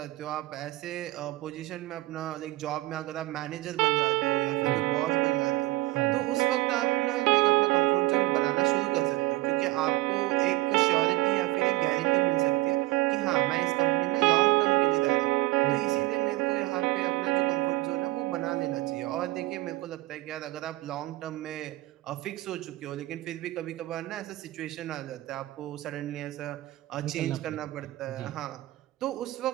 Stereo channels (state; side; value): quieter; left; 18.8 dB